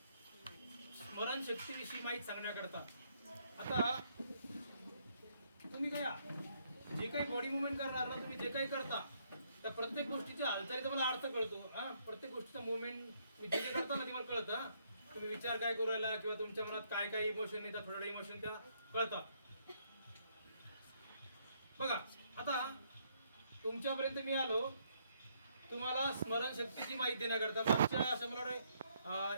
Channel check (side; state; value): both; inverted; correlation -0.71